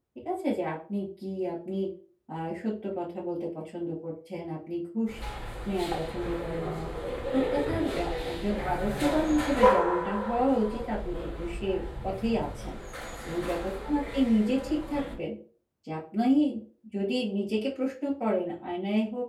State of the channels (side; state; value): both; identical; correlation 1.00